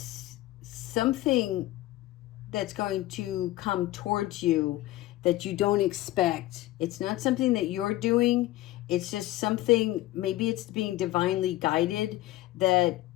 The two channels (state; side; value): quieter; right; 16.5 dB